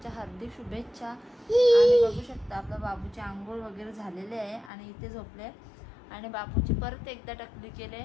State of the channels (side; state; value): right; drops out; at 4.7 s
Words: हार्दिक शुभेच्छा. आणि बघू शकता आपल्या बाबूची आंघोळ वगैरे झालेले आहे आणि इथे झोपले आणि बाबूची परत एकदा टकली केले.